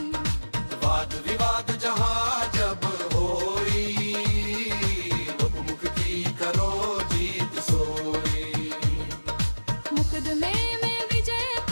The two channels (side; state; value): both; inverted; correlation -1.00